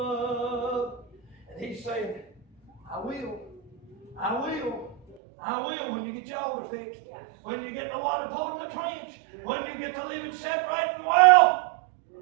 I will. I will. I will when you get your altar fixed. When you get the water poured in the trench. When you get to living separate from the world.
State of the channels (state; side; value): drops out; left; at 5.2 s